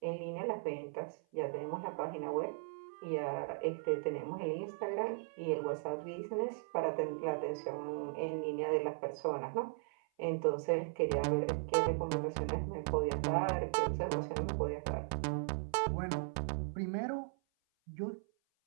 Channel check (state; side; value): silent; left; 53 dB below the other